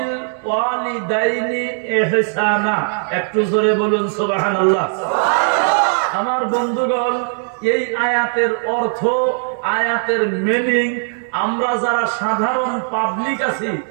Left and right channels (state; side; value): silent; left; digital silence